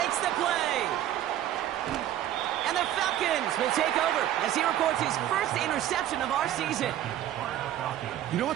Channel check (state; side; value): quieter; left; 12.2 dB